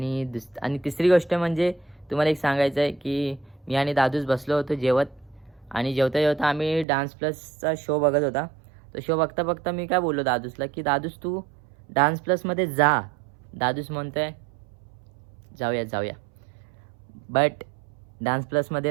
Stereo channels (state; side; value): drops out; left; at 6.9 s